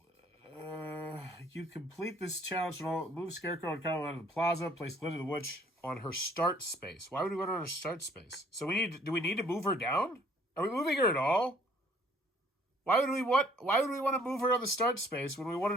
you complete this challenge. Move Scarecrow and Kyle out of the Plaza. Place Glinda the Witch on her start space. Why would we want her on her start space? So do we need to move her down? Are we moving her at all? Why would we want to move her on the start space when we want her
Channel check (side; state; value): both; normal; correlation 0.60